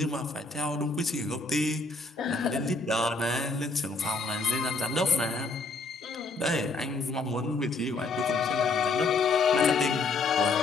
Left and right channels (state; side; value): quieter; right; 3.6 dB